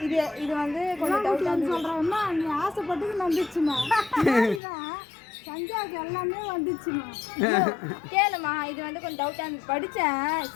இது வந்து கொஞ்சம் டவுட் சொல்கிறேன்னா நீ ஆசைப்பட்டு வந்துச்சுமா. சந்தியாவுக்கு எல்லாமே வந்துச்சுமா. கேளுமா, இது வந்து கொஞ்சம் டவுட்டாக இருந்து படித்தேன்.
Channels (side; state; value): right; drops out; at 4.6 s